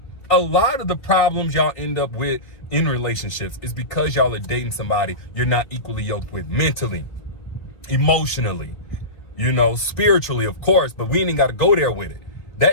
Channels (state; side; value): late; right; 4.2 ms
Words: A lot of the problems y'all end up with in relationships is because y'all are dating somebody you're not equally yoked with mentally, emotionally, you know, spiritually, of course, but we ain't got to go there with it.